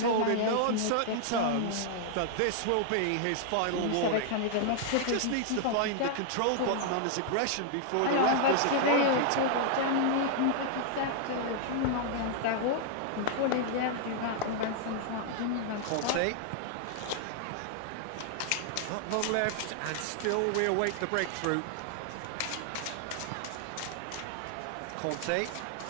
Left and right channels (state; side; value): different; both; correlation -0.01